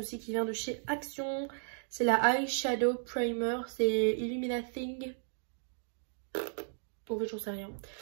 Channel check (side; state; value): left; silent; digital silence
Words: qui vient de chez Action. C'est la Eyeshadow Primer. C'est Illuminating. En fait, j'en sais rien.